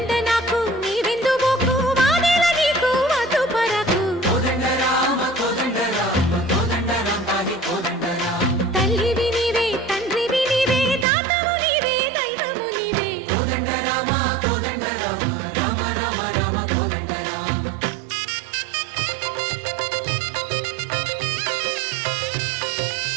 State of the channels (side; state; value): left; drops out; at 11.1 s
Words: नाकु नी विंदु बोकु वादेल नीकु वधु परकु कोदंड राम पाहि कोदंड राम तल्लिवि नीवे तंड्रिवि नीवे दातवु नीवे दैवमु नीवे कोदंड राम राम राम राम कोदंड राम